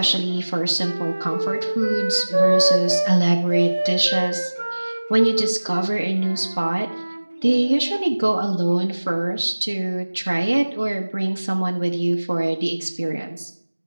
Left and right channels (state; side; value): inverted; both; correlation -1.00